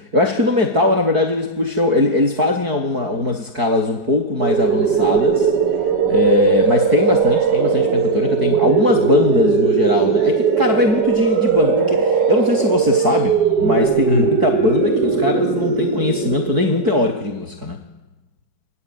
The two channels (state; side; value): late; left; 4.6 ms